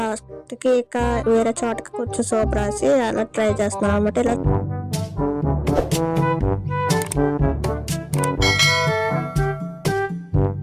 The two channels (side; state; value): both; identical; correlation 1.00